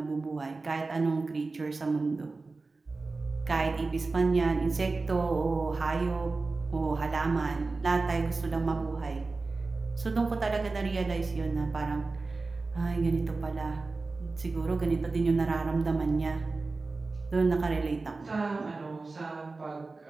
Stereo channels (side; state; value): left; quieter; 3.7 dB